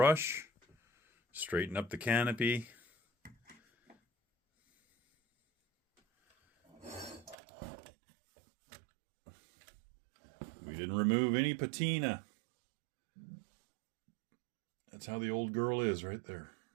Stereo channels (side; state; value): left; drops out; at 7.4 s